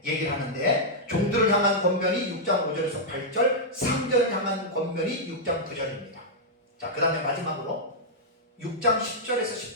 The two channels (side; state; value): both; normal; correlation -0.07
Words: 얘기를 하는데, 종들을 향한 권면이 6장 5절에서 8절, 상전을 향한 권면이 6장 9절입니다. 자, 그 다음에 마지막으로 6장